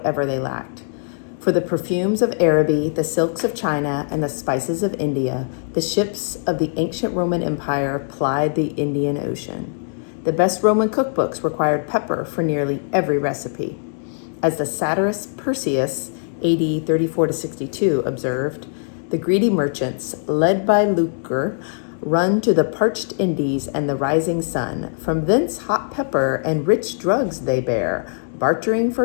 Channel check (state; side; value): silent; right; digital silence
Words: they lacked. For the perfumes of Araby, the silks of China, and the spices of India, the ships of the ancient Roman Empire plied the Indian Ocean. The best Roman cookbooks required pepper for nearly every recipe. As the satirist Persius, AD 34 to 62, observed, the greedy merchants, led by lucre, run to the parched Indies and the rising sun. From thence hot pepper and rich drugs they bear, bartering